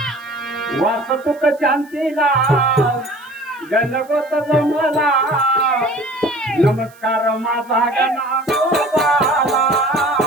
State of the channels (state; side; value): noise; right; hiss, 28 dB below the sound